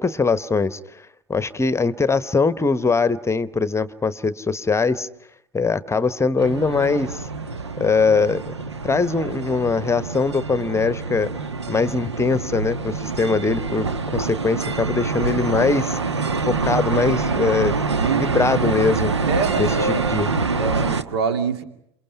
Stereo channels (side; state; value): both; normal; correlation 0.42